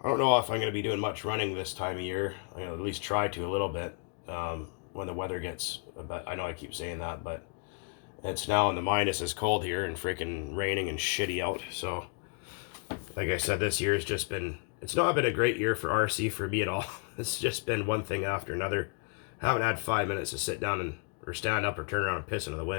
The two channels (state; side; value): quieter; right; 38.9 dB